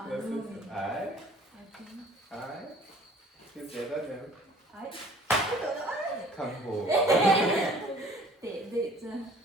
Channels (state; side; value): normal; both; correlation 0.52